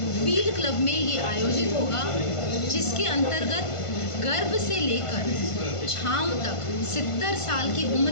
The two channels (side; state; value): right; late; 1.5 ms